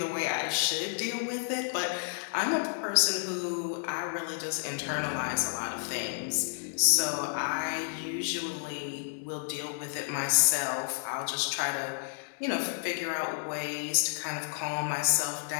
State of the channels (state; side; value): silent; right; digital silence